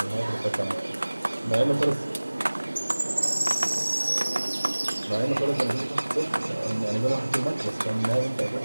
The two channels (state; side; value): inverted; both; correlation -1.00